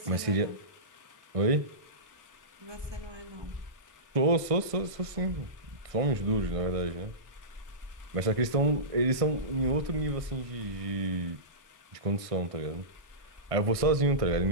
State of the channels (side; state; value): left; late; 1.5 ms